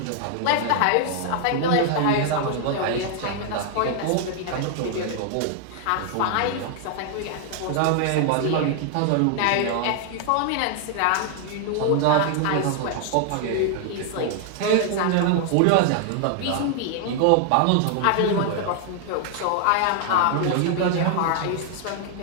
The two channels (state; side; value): different; both; correlation 0.00